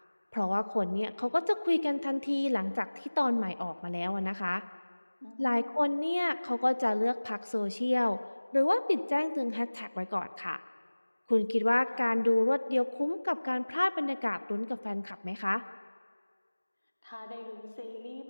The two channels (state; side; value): inverted; both; correlation -1.00